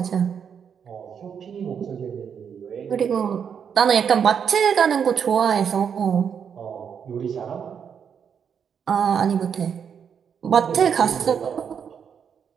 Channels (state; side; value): quieter; left; 7.4 dB